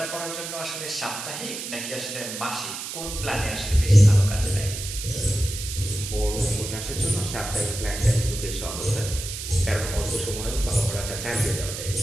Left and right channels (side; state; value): right; noise; hiss, 7 dB below the sound